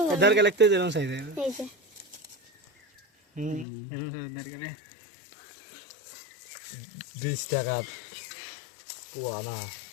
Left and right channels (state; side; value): drops out; right; at 3.7 s